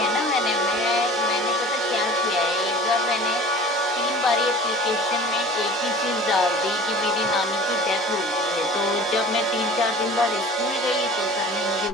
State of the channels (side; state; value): both; normal; correlation 0.43